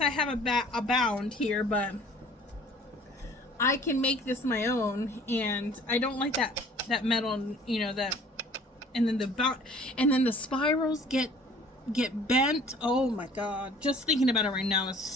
have a bound here, but I can make this my own, and I don't like that metal, that, and then the spirals get bent. Oh my god, just thinking about it right now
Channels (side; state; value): both; normal; correlation 0.51